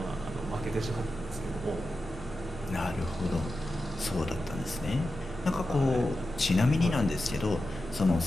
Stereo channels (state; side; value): normal; both; correlation 0.91